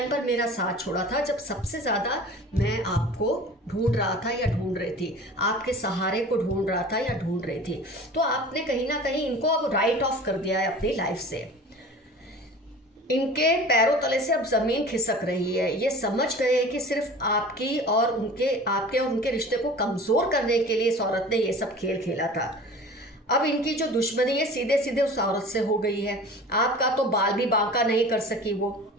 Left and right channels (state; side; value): normal; both; correlation 0.40